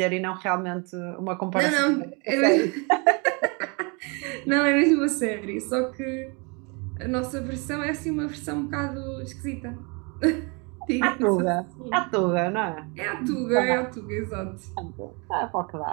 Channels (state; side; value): quieter; left; 31.5 dB